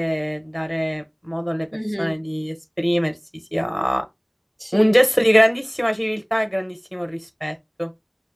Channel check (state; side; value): identical; both; correlation 1.00